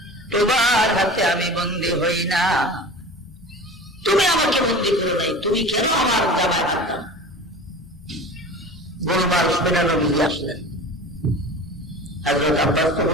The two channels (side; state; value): both; normal; correlation 0.37